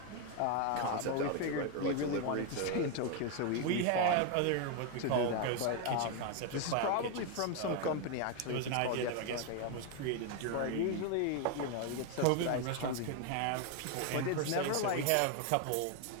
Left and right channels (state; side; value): different; both; correlation 0.01